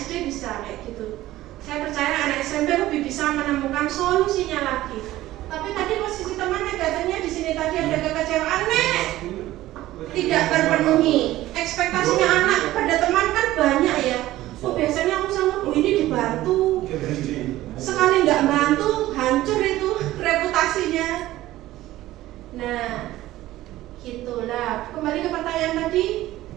SD bisa kayak gitu. Saya percaya anak SMP lebih bisa menemukan solusinya lagi. Tapi tadi posisi teman negatifnya di sini tadi ada kekecewaan tidak terpenuhi. Ekspektasinya anak pada teman kan banyak ya. Oh biasanya aku sama Bu ini dibantu. Sekali nggak bantu hancur itu reputasinya. Nah, gitulah. Kembali ke pertanyaan tadi,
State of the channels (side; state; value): left; quieter; 15.7 dB